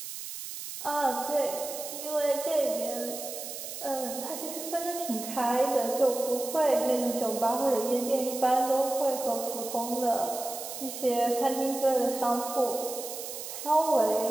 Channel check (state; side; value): noise; right; hiss, 8 dB below the sound